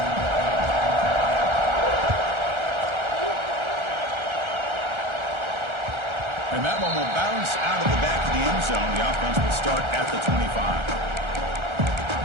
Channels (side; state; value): left; late; 1.3 ms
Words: And that one will bounce out of the back of the end zone. The offense will start at the 25.